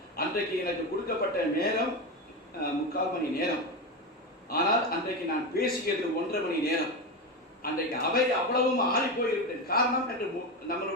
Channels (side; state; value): both; normal; correlation 0.17